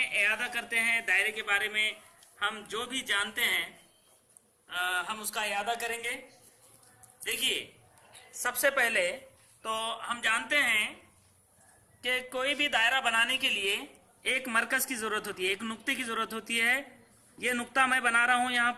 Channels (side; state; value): both; identical; correlation 1.00